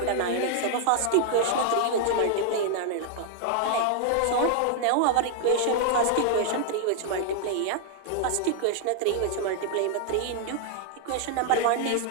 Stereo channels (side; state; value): both; different; correlation 0.00